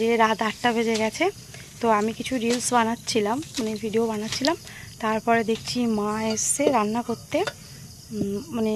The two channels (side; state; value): both; identical; correlation 1.00